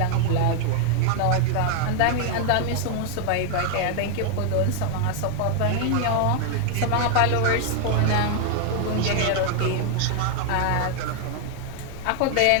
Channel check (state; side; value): different; both; correlation 0.00